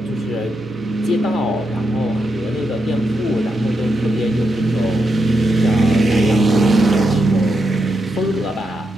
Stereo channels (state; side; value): normal; both; correlation 0.84